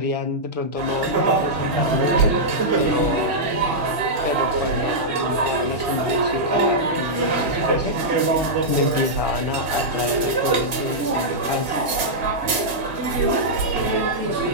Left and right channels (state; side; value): late; left; 2.0 ms